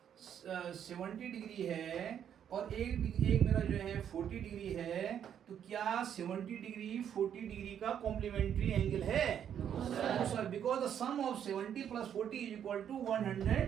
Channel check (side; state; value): left; quieter; 9.1 dB